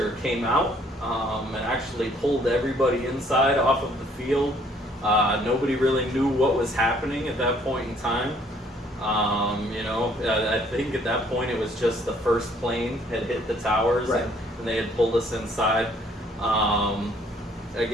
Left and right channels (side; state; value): both; normal; correlation 0.62